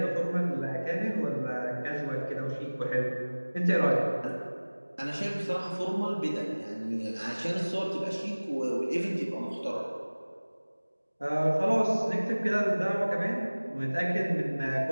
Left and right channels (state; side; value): inverted; both; correlation -1.00